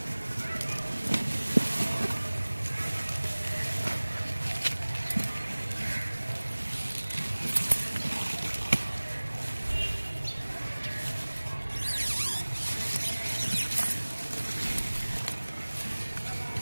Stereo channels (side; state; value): both; inverted; correlation -1.00